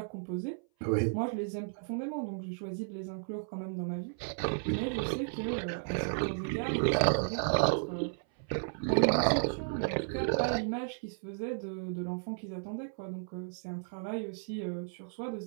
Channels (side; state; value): left; silent; 55 dB below the other